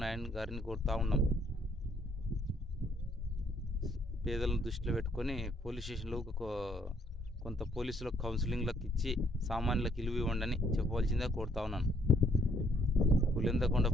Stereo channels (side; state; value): both; normal; correlation 0.68